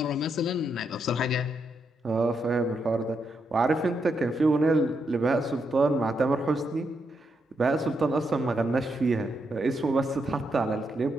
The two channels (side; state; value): both; normal; correlation 0.81